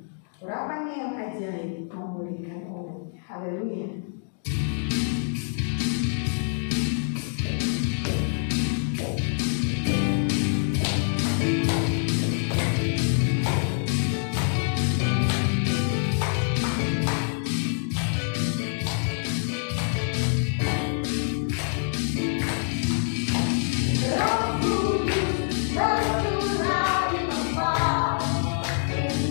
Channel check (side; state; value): right; silent; digital silence